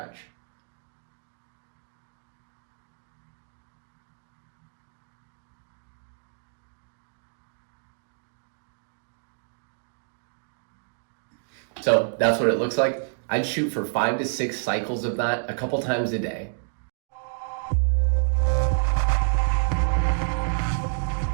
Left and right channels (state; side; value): silent; left; digital silence